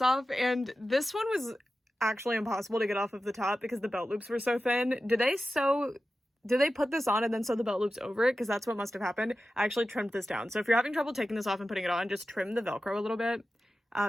off, and this one was actually impossible to get off of the top because the belt loops were so thin. Did they put this on and then sew the belt loops over it? Because that's what must have happened. I actually trimmed this down. So if you're having trouble taking this off and putting it on, just trim the Velcro a little bit,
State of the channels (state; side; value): normal; both; correlation 0.93